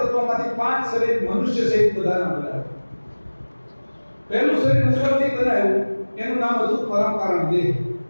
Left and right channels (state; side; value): inverted; both; correlation -1.00